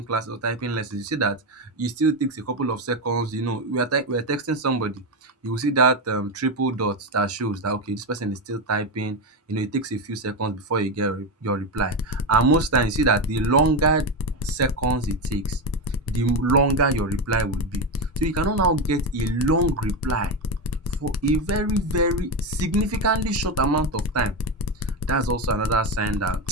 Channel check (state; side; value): normal; both; correlation 0.13